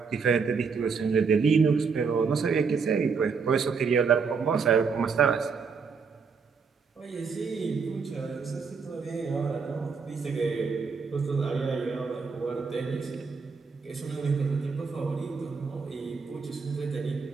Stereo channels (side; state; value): left; quieter; 5.4 dB